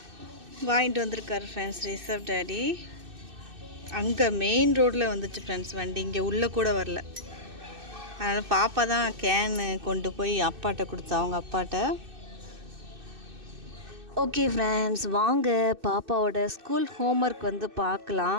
வாங்கிட்டு வந்திருக்காரு ஃப்ரெண்ட்ஸ் ரிஷப் டேடி. அங்கே மெயின் ரோட்டில் வந்துச்சு ஃப்ரெண்ட்ஸ் வண்டி, இங்கே உள்ளே கூட வரல. அதனால் பாப்பா தான் கேனு கொண்டு போய் அப்பாட்ட கொடுத்தா, அவங்க அப்பாட்ட. ஓகே ஃப்ரெண்ட்ஸ் வாங்க பாப்பாவோட ஸ்கூல் ஹோம்ஒர்க் வந்து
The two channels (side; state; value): left; late; 2.6 ms